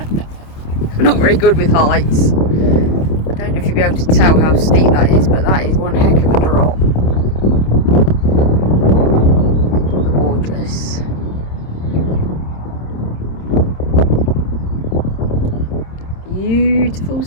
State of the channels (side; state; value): right; late; 27 ms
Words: I'm not very good with heights. I don't know if you'll be able to tell how steep that is, but that is one heck of a drop. Gorgeous. Beautiful